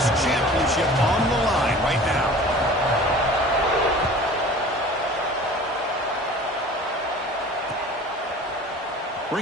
championship on the line right now.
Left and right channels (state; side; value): normal; both; correlation 0.43